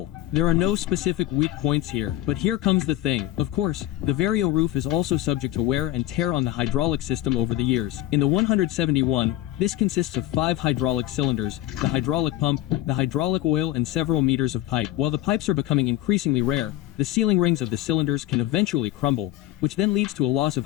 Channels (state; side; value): quieter; right; 14.6 dB